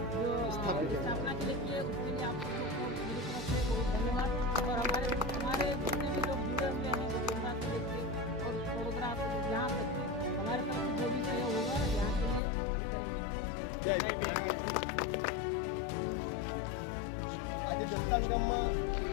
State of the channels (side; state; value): right; drops out; at 12.4 s